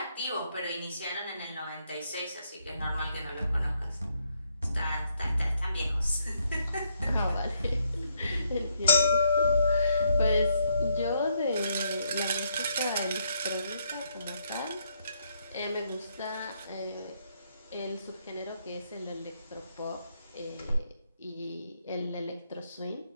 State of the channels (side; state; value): both; inverted; correlation -0.75